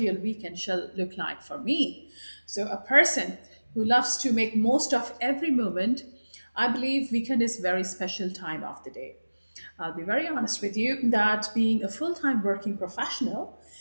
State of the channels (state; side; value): inverted; both; correlation -1.00